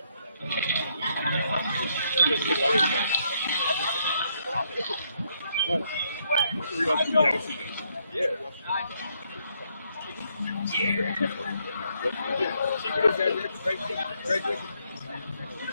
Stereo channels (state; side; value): inverted; both; correlation -0.73